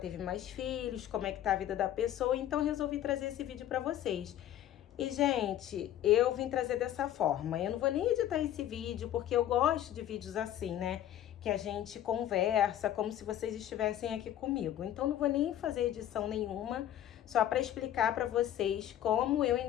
mais filhos, como é que tá a vida da pessoa, então resolvi trazer esse vídeo pra vocês. E, gente, eu vim trazer dessa forma. Eu não vou nem editar esse vídeo, porque eu gosto de vídeos assim, né? Que a gente conversa, como se vocês estivessem aqui comigo. Então, não vou nem fazer edição nenhuma, só para explicar para vocês como eu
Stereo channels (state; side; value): quieter; right; 11.7 dB